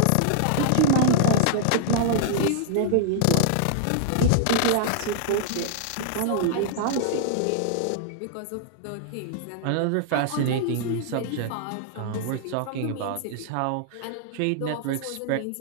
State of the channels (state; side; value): different; both; correlation -0.01